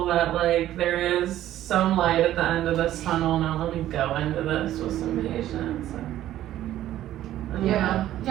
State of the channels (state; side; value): quieter; left; 13.0 dB